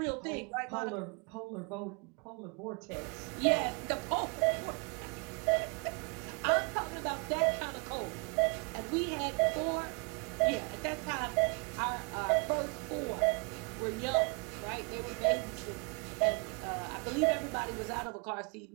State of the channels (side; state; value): left; quieter; 34.4 dB